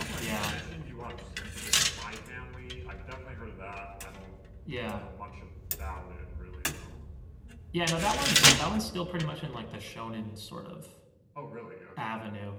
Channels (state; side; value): identical; both; correlation 1.00